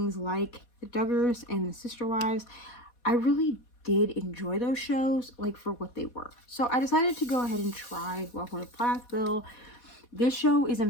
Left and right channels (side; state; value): right; late; 4.2 ms